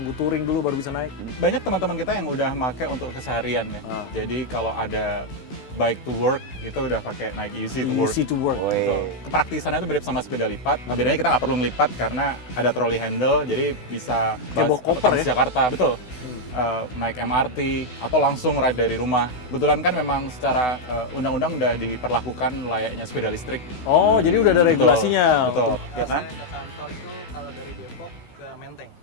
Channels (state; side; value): late; right; 16 ms